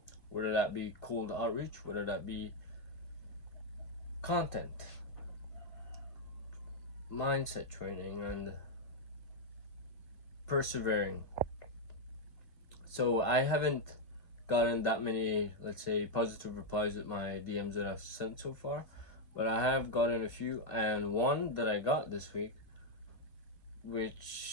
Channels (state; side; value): late; right; 2.0 ms